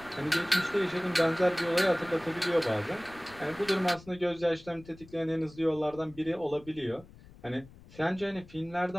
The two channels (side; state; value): left; noise; rumble, 21 dB below the sound